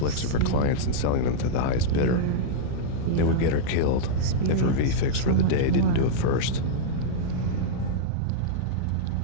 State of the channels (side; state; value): both; different; correlation -0.03